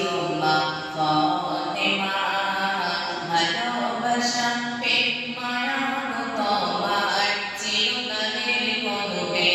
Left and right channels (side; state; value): both; identical; correlation 1.00